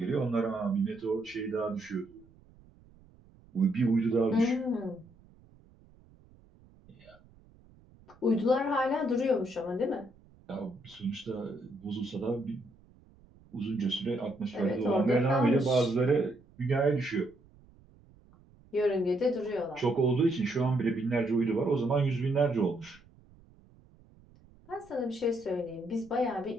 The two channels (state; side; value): noise; right; rumble, 27 dB below the sound